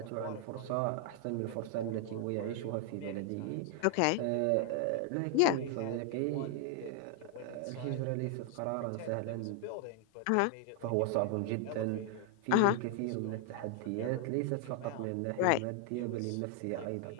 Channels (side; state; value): both; different; correlation 0.00